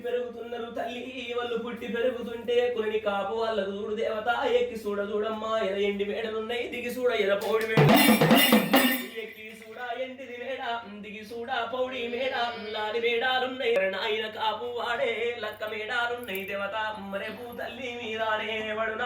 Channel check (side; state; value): both; identical; correlation 1.00